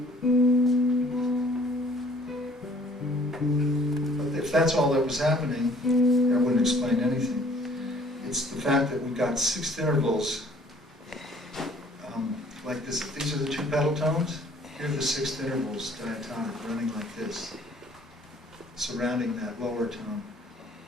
If that's all that was happening, that wouldn't explain anything. It's the fact that we've got sixth intervals like this. These are the two pedal tones. Here are the sixth intervals diatonic running like this, surrounding that lower tone,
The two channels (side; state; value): both; normal; correlation 0.57